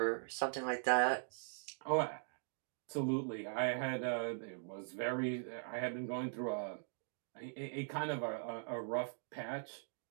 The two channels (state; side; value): silent; left; digital silence